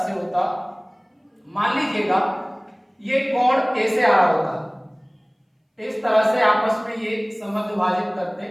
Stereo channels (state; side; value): identical; both; correlation 1.00